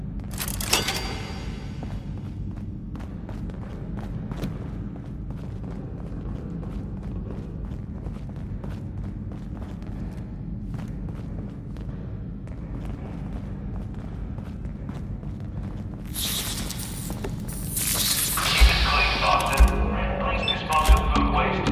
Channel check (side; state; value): both; identical; correlation 1.00